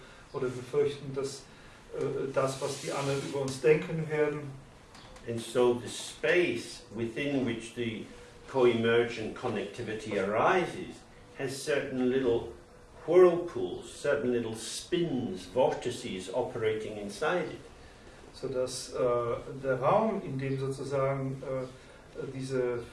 oder wir fürchten, dass das, was die anderen über uns denken werden. And so the space within which the co-emergent connectivity arises has certain little whirlpools, certain little spins, vortices operating inside it. Sodass der Raum, in dem sozusagen diese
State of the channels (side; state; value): both; identical; correlation 1.00